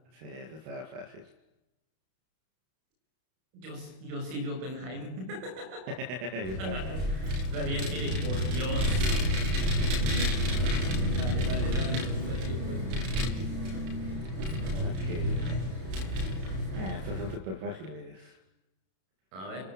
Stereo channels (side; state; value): left; late; 32 ms